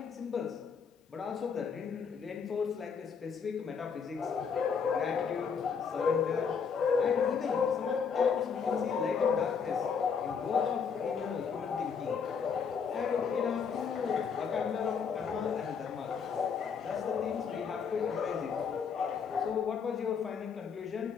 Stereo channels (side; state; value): right; quieter; 6.3 dB